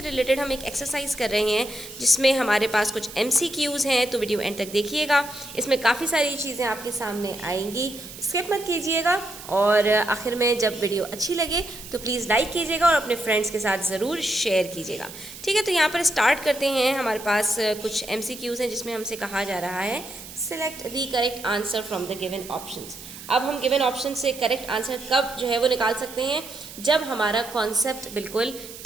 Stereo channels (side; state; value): right; noise; hiss, 14 dB below the sound